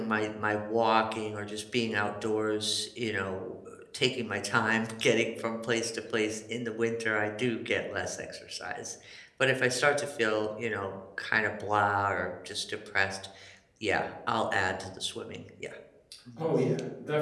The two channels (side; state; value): both; identical; correlation 1.00